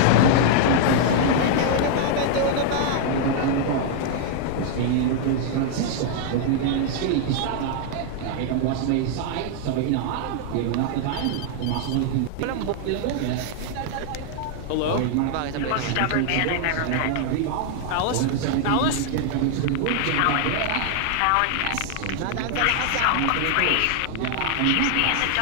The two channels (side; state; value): both; different; correlation 0.00